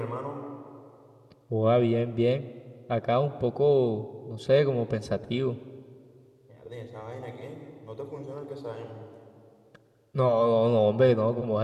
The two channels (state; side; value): identical; both; correlation 1.00